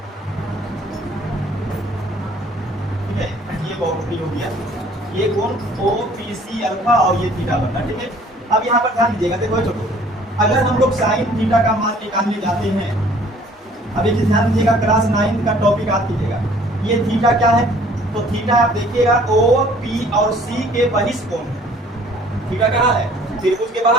ठीक है, ये बहुत हो गया, ये कोण ओ पी सी अल्फा और ये थीटा बनना। ठीक है, अब यहाँ पर ध्यान दीजिएगा। देखो छोटो, अगर हम लोग साइन थीटा का मान निकालने जाते हैं, अब एक ध्यान दीजिएगा, क्लास 9 का टॉपिक याद कीजिएगा। ये थीटा क्या है, तो थीटा आप देखिएगा ओ पी और सी के बहिष्ठ कोण है। थीटा कहाँ है, त्रिभुज के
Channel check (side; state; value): both; normal; correlation 0.55